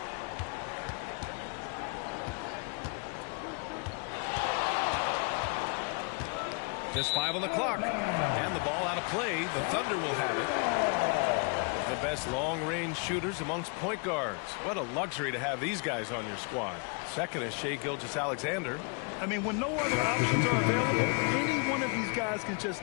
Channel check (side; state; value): right; quieter; 36.2 dB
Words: Just 5 on the clock. And the ball out of play. The Thunder will have it. The best long-range shooters amongst point guards. What a luxury to have these guys on your squad. Second is Shai Gilgeous-Alexander. I mean, when no other options are available, any one of these guys can just